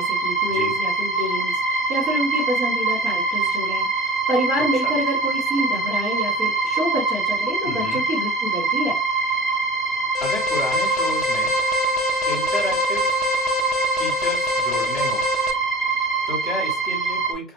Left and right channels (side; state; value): both; normal; correlation 0.41